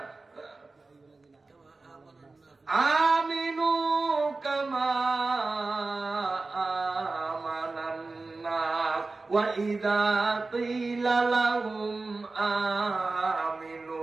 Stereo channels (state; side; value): quieter; left; 3.6 dB